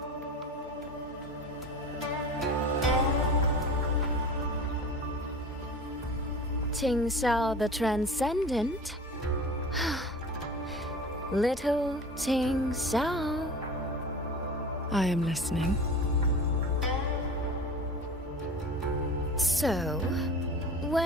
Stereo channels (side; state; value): both; normal; correlation 0.36